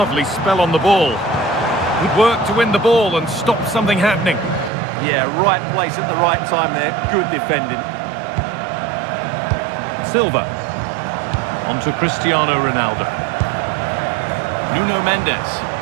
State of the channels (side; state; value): left; drops out; at 4.7 s